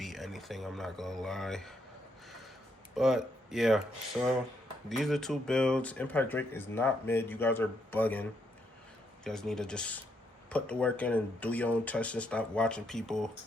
anything, I'm not gonna lie. But yeah, so these are two builds. Impact Drake is not mid. You guys are bugging. You guys need to just put the work in and do your own tests and stop watching people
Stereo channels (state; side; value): normal; both; correlation 0.76